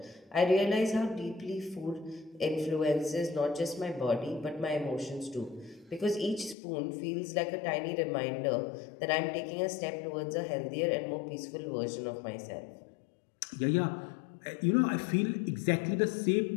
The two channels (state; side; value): drops out; right; at 6.6 s